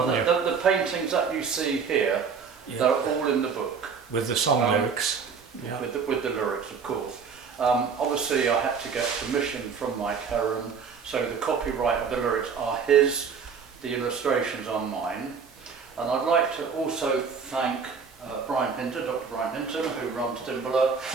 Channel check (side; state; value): left; quieter; 5.9 dB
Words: you? The paintings that you see here, they're all in the book. With the song lyrics. Yeah. With the lyrics, of course. Obviously, I had to get permission from Mike Heron, so the copyright of the lyrics are his, the illustrations are mine. And I'd like to also thank Brian Hinton, Dr. Brian Hinton, who runs Dimbola,